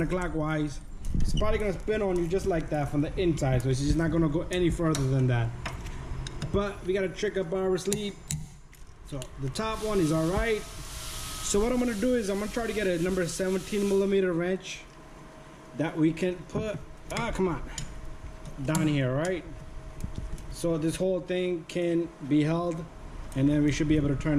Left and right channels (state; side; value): identical; both; correlation 1.00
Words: It's probably gonna spin on you just like that from the inside, so it's just not gonna go any further than that. But we got a trick up our sleeve. So the top one is all right. So what I'm gonna do is I'm gonna try to get a number 17 millimeter wrench that we can put, come on, down here, right? So this whole thing can be held and then we should be able to turn